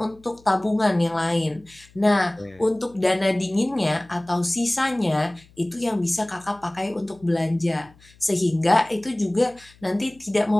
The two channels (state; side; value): noise; left; hum, 27 dB below the sound